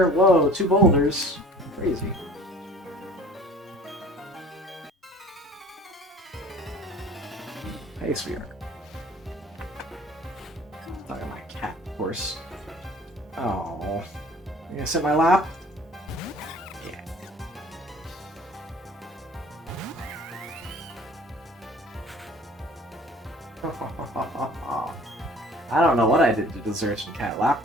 Whoa, 2 boulders. Crazy. Hey, sweetheart. Talking to my cat, of course. Oh. You gonna sit in my lap? Yeah. I don't know what I did to deserve some cat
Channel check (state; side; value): normal; both; correlation 0.49